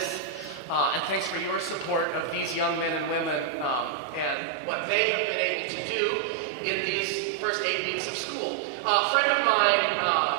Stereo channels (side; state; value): left; drops out; at 4.4 s